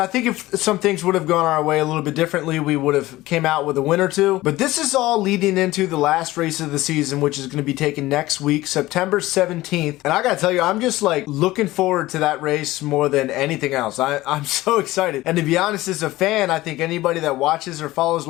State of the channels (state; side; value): quieter; right; 17.7 dB